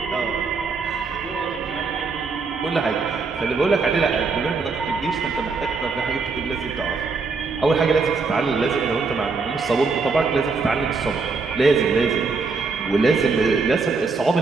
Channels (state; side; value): quieter; left; 4.4 dB